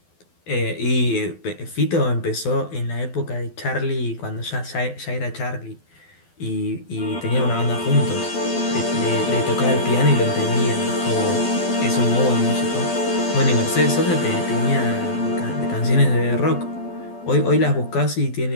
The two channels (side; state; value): right; late; 12 ms